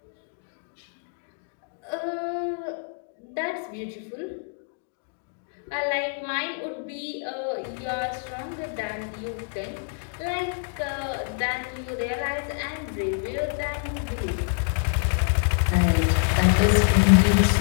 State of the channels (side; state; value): right; silent; digital silence